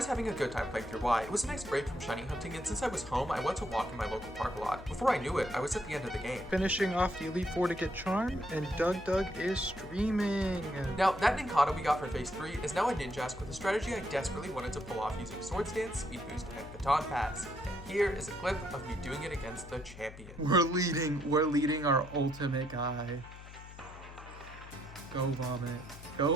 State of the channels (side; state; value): left; noise; hum, 15 dB below the sound